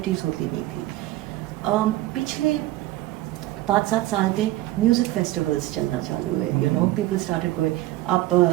होती नहीं थी. पिछले 5-7 साल में म्यूज़िक फेस्टिवल्स चलना चालू है. You know, people started going. आप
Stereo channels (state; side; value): quieter; left; 16.4 dB